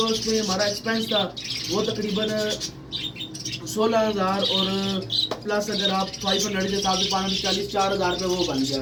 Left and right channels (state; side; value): identical; both; correlation 1.00